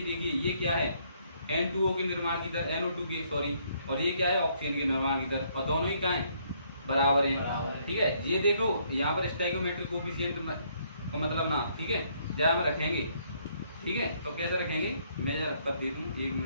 देखिए ये क्या है? N2O के निर्माण की दर, NO2 के सॉरी, और ये क्या है? ऑक्सीजन के निर्माण की दर, और दोनों ही क्या है? बराबर है। ठीक है, ये देखो यहाँ पर स्टोइकोमेट्रिक कोफिशिएंट का मतलब ना, ठीक है जहाँ हम रखेंगे। ठीक है, तो कैसे रखेंगे? मैं जरा कर दे दूँ, 1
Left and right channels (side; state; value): both; inverted; correlation -0.68